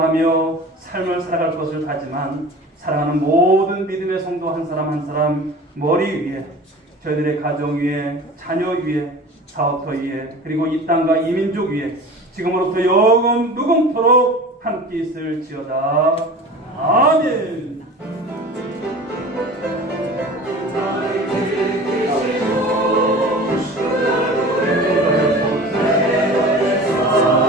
삶을 살아갈 것을 다지만 사랑하는 모든 믿음의 성도 한 사람 한 사람 머리 위에 저희들의 가정 위에 자녀 위에 사업터 위에 그리고 이 땅과 이 민족 위에 지금으로부터 영원 무궁토록 함께 있을지어다. 아멘.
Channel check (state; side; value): normal; both; correlation 0.38